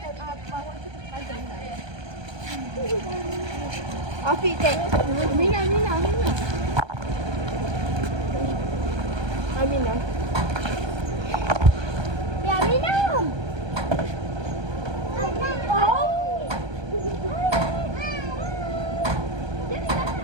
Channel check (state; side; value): late; left; 1.2 ms